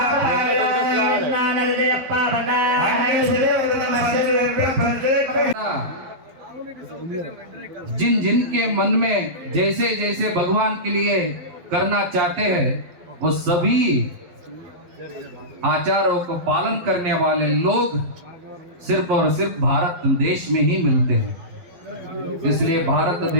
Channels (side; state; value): left; late; 11 ms